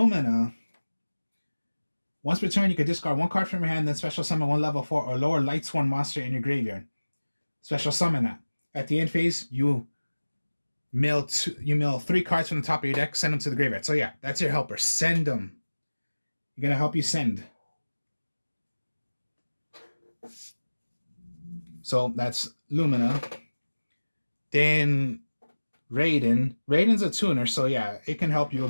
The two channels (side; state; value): both; inverted; correlation -1.00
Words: once per turn, you can discard one card from your hand, then special summon one level 4 or lower lightsworn monster in your graveyard. Special summon that. At the end phase, you mill 3 cards from the top of your deck, send them to the graveyard. So yeah, that's your helper. Send them. You're going to help you send. So that's Lumina. Then Raiden. Raiden's a tuner, so yeah, it can help you a